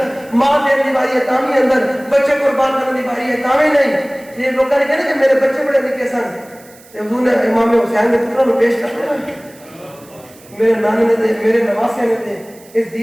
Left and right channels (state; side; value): noise; right; hiss, 25 dB below the sound